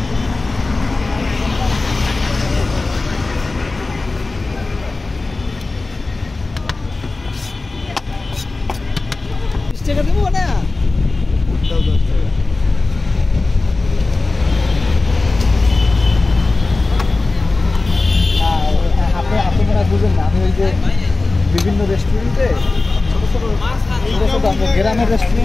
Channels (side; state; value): right; quieter; 3.4 dB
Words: টাকা দেবো না আপনি মনে বুঝেন না আমি ওই যে বিভিন্ন রেস্টুরেন্টে ছোটো ছোটো গ্রামের